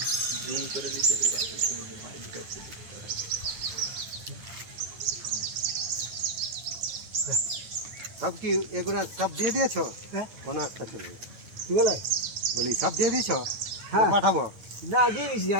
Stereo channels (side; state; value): left; late; 9.0 ms